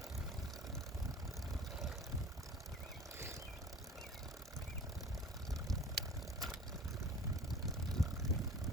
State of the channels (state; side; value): normal; both; correlation 0.43